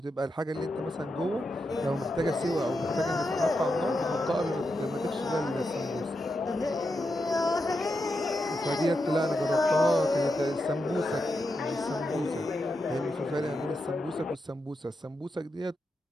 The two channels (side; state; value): both; normal; correlation 0.86